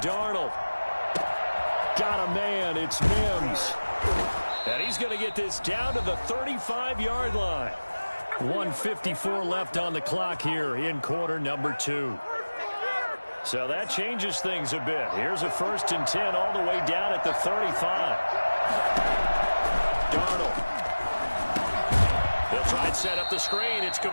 Darnold. Got a man, it's Mims. And he's going to get this down to the 35-yard line. 1:54 left on the clock here in quarter number 2. So that changes things a bit. Here's a 1st and 10 all the way down at the 35. Darnold. They'll try and set up the screen. It's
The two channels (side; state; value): both; inverted; correlation -1.00